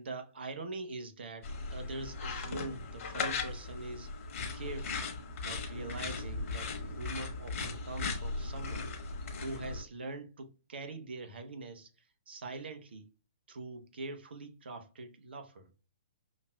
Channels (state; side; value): inverted; both; correlation -0.45